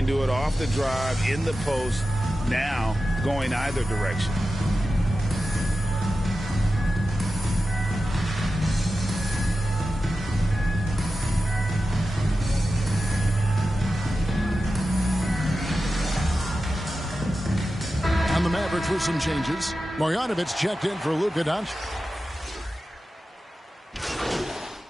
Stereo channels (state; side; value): normal; both; correlation 0.92